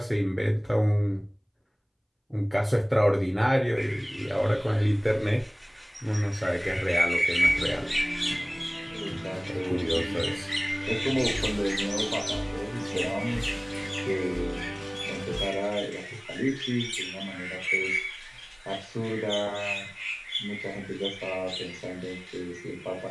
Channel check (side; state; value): both; identical; correlation 1.00